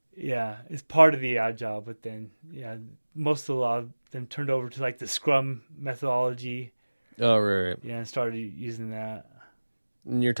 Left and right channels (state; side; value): inverted; both; correlation -1.00